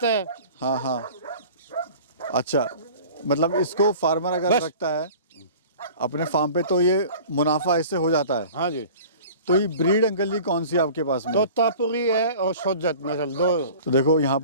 है। हाँ हाँ। अच्छा, मतलब इसको फार्मर अगर बस। रखता है अपने फार्म पे तो ये मुनाफा इससे हो जाता है? हाँ जी। तो ये ब्रीड अंकल जी कौन सी है आपके पास में? तोतापुरी है और सोजत नस्ल, 2। तो देखो यहाँ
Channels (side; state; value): both; inverted; correlation -0.43